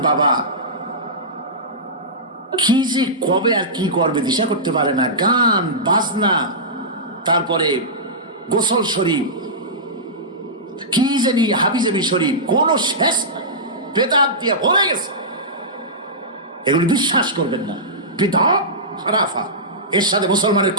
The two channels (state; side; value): normal; both; correlation -0.16